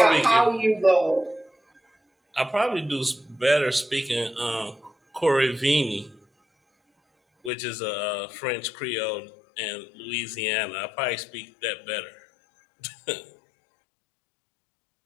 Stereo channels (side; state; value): right; drops out; at 7.5 s